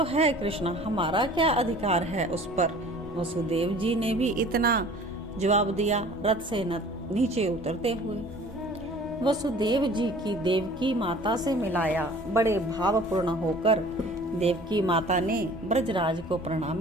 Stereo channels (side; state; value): both; normal; correlation 0.48